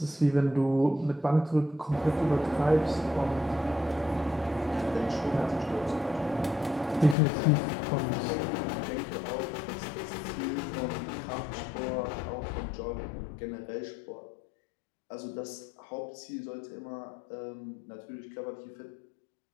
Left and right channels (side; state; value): right; drops out; at 7.2 s